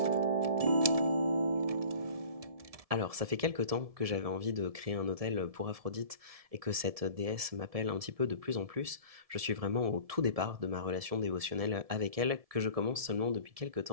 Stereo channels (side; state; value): left; late; 1.7 ms